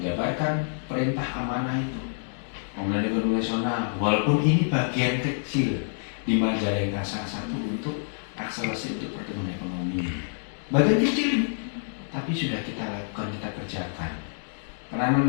perintah amanah itu Pemulihan Ekonomi Nasional. Walaupun ini bagian kecil di Majalengka salah satu untuk akselerasi untuk pertumbuhan ekonomi, bagian kecil ini, tapi sudah kita lakukan, kita kerjakan.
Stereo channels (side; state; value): right; silent; digital silence